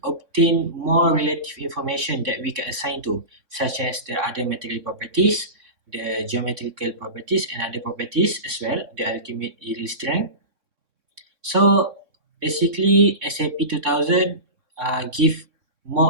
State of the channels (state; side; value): late; left; 3.5 ms